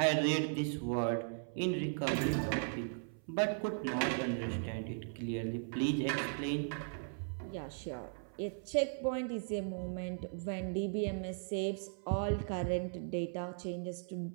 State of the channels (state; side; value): silent; left; 53 dB below the other